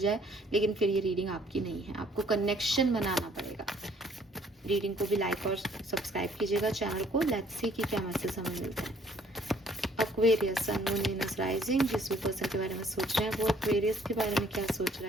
लेकिन फिर ये रीडिंग आपकी नहीं है, आपको कनेक्शन बनाना पड़ेगा। रीडिंग को भी लाइक और सब्सक्राइब कीजिएगा चैनल को। लेट्स सी कि क्या मैसेज हमें मिलता है। एक्वेरियस, सन, मून, वीनस, राइजिंग, जिस भी पर्सन के बारे में सोच रहे हैं वो एक्वेरियस के बारे में क्या सोच रहा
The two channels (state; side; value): normal; both; correlation 0.61